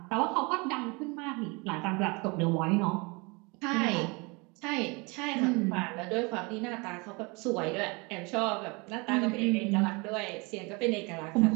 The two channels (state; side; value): quieter; left; 28.4 dB